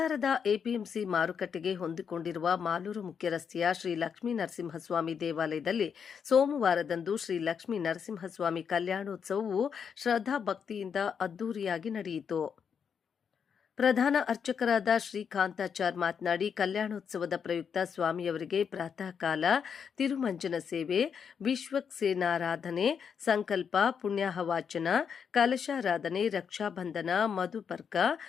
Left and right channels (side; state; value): right; quieter; 7.0 dB